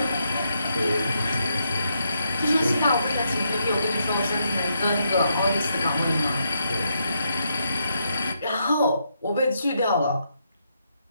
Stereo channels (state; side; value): inverted; both; correlation -0.79